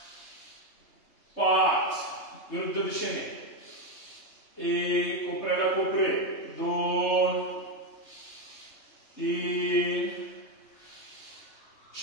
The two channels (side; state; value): right; late; 3.3 ms